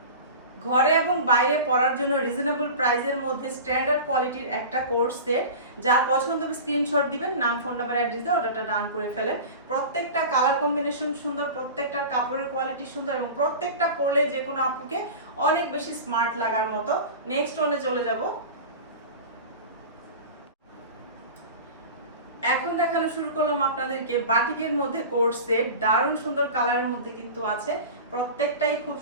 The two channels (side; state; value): both; inverted; correlation -0.33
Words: ঘরে এবং বাইরে পরার জন্য রিজনেবল প্রাইসের মধ্যে স্ট্যান্ডার্ড কোয়ালিটির একটা কোর্স সেট। যা পছন্দ হবে স্ক্রিনশট দিবেন, নাম ফোন নাম্বার অ্যাড্রেস দিয়ে অর্ডারটা ডান করে ফেলেন। প্রত্যেকটা কালার কম্বিনেশন সুন্দর, প্রত্যেকটার কাপড়ের কোয়ালিটি সুন্দর এবং প্রত্যেকটা পরলে যে কোনো আপুকে অনেক বেশি স্মার্ট লাগার মতো। নেক্সট ওয়ানে চলে যাব। এখন দেখানো শুরু করলাম আপনাদেরকে বাটিকের মধ্যে কোর্স সেট, দারুণ সুন্দর কালারের মধ্যে কিন্তু আছে, প্রত্যেকটাই খুব